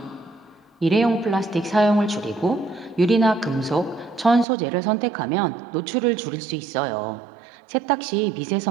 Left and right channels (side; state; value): left; drops out; at 4.5 s